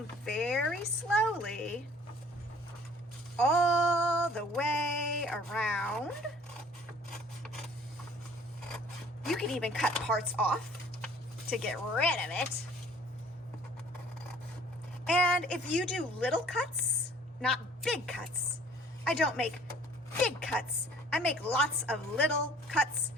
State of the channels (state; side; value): normal; both; correlation 0.53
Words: very slowly all the way around. You can even cut parts off to get rid of it. And if you do little cuts, not big cuts, I don't make big cuts. I make lots of little cuts,